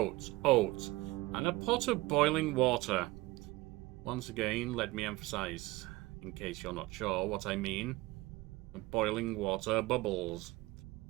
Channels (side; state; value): left; quieter; 19.9 dB